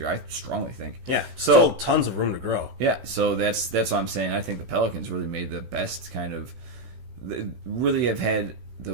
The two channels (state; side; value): late; left; 16 ms